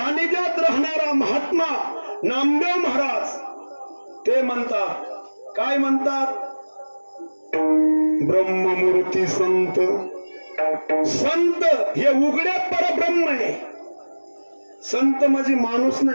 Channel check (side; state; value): both; inverted; correlation -1.00